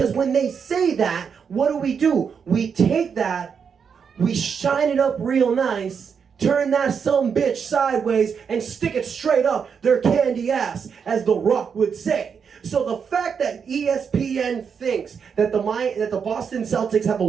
when they say that, what do? We take that, we shine it up real nice, turn that some bitch sideways, and stick it straight up their candy ass, as The Rock would say. So the fact that ESPN thinks that the Boston Celtics have a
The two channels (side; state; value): left; quieter; 6.6 dB